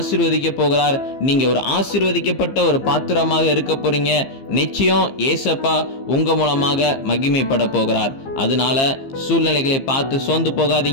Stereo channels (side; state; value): right; late; 15 ms